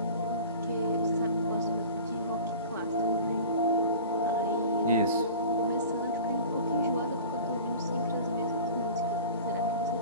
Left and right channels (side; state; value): both; inverted; correlation -0.39